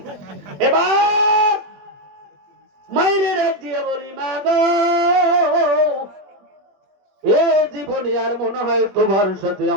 এবার মায়ের ডাক দিয়ে বলি, মা গো, এ জীবনে আর মনে হয় তোমার সাথে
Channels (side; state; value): left; late; 21 ms